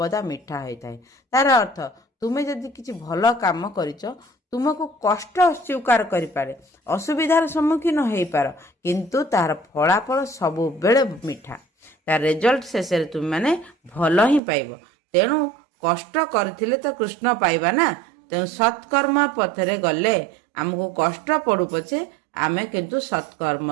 ମିଠା ହୋଇଥାଏ। ତାର ଅର୍ଥ ତୁମେ ଯଦି କିଛି ଭଲ କାମ କରିଛ, ତୁମକୁ କଷ୍ଟ ସ୍ୱୀକାର କରିପାରେ, ଅସୁବିଧାର ସମ୍ମୁଖୀନ ହେଇପାର, କିନ୍ତୁ ତାର ଫଳାଫଳ ସବୁବେଳେ ମିଠା, ତାର ରେଜଲ୍ଟ ଶେଷରେ ତୁମେ ମାନେ ଭଲ ହିଁ ପାଇବ। ତେଣୁ କଷ୍ଟ କରିଥିଲେ ତ କୃଷ୍ଣ ପାଇବା ନା, ତେଣୁ ସତ୍କର୍ମ ପଥରେ ଗଲେ ଆମକୁ କଷ୍ଟ ପଡୁ ପଛେ ଆମେ କିନ୍ତୁ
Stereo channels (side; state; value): left; drops out; at 14.4 s